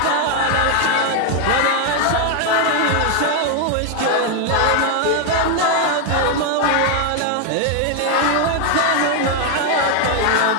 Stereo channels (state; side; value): different; both; correlation 0.01